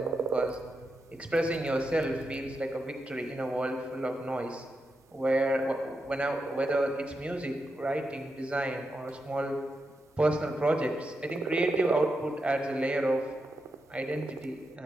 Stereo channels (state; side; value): normal; both; correlation 0.86